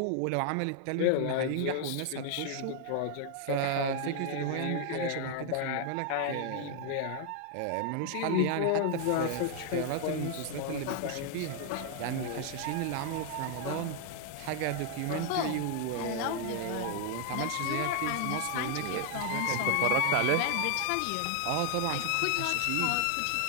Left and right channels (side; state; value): both; different; correlation 0.00